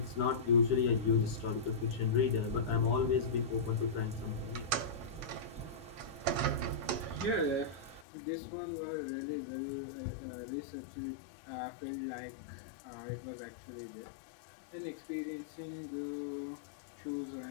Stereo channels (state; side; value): drops out; right; at 8.1 s